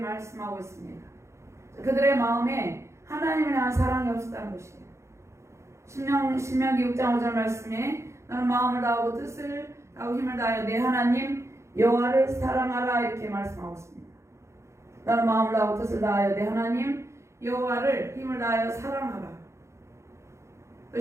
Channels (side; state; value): left; late; 0.14 ms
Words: 있습니다. 그들의 마음에 하나님을 향한 사랑이 없었다는 것이에요. 신명기 6장 5절 말씀에 너는 마음을 다하고 뜻을 다하고 힘을 다하여 내 하나님 여호와를 사랑하라 이렇게 말씀하고 있습니다. 너는 마음을 다하고 뜻을 다하여 내 하나님 여호와를 힘을 다하여 사랑하라. 또